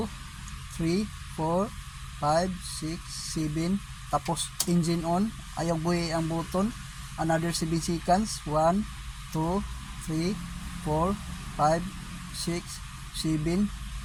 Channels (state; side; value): identical; both; correlation 1.00